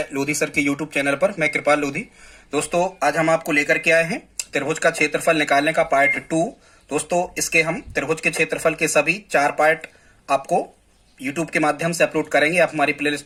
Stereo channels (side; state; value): both; identical; correlation 1.00